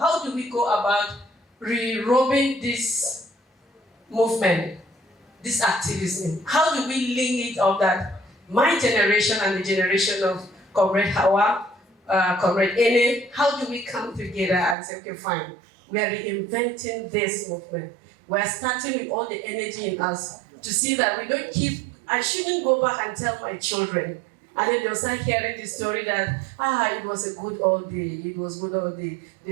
do we go about re-robing this movement, this activism? How do we link it up that my generation and the generation of Comrade Hawa, Comrade Ene, how do we come together and say, okay, fine, we are reinventing this movement. We are starting with all the energy in us to see that we don't keep, I shouldn't go back and tell my children. And then they'll start hearing the story that, it was a good old day, it was good old day.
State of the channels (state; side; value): drops out; left; at 14.8 s